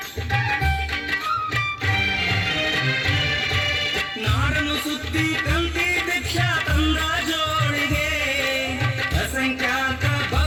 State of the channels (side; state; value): both; identical; correlation 1.00